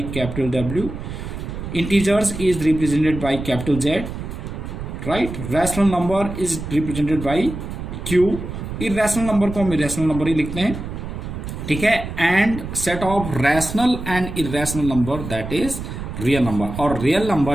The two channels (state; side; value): noise; right; rumble, 8 dB below the sound